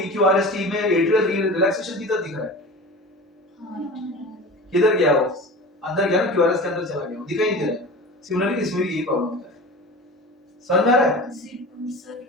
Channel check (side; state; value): both; normal; correlation 0.35